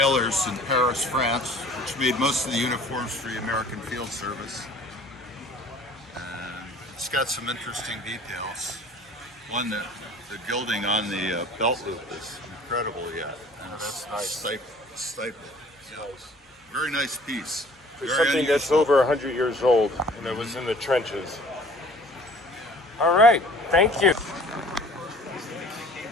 in Paris, France, which made most of the uniforms for the American Field Service. And it's got some interesting details. One, the gilding on the belt loop is incredible yet. And that's nice. Stapled. Yeah. Very nice piece. For Very something that's unusual. over 100 years old and that was in the trenches. All right, thank you.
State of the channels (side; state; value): both; normal; correlation 0.50